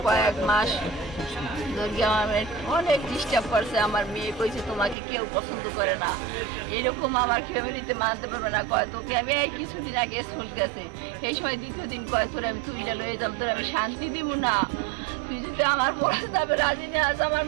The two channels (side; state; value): left; drops out; at 5.0 s